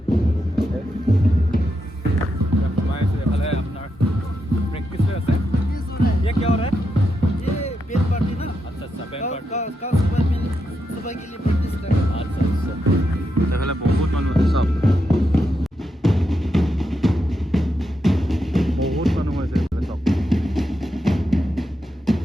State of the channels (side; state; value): both; normal; correlation 0.84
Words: এইফালে আপোনাৰ প্ৰেক্টিছ হৈ আছে ये क्या हो रहा है ये बेल पार्टी ना अच्छा बैंड पार्टी का सुबह के लिए प्रैक्टिस कर रहे हैं अच्छा এইফালে বহুত মানুহ আছে চব বহুত মানুহ হৈছে এইফালে চব